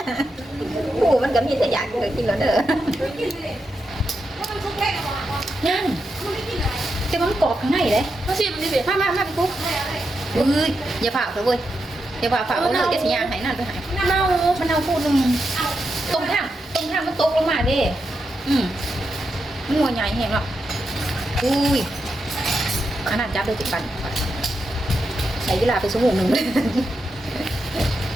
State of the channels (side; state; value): both; normal; correlation 0.86